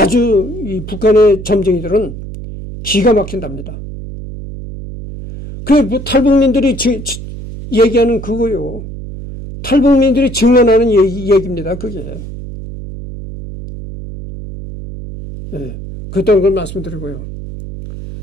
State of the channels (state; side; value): noise; right; hum, 11 dB below the sound